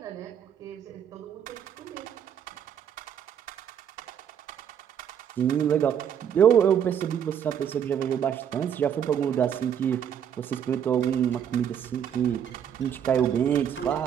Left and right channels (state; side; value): quieter; left; 8.7 dB